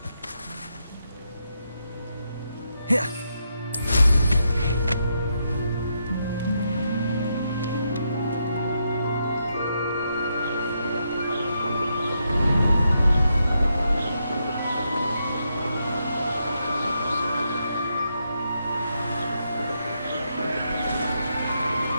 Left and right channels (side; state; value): both; inverted; correlation -0.81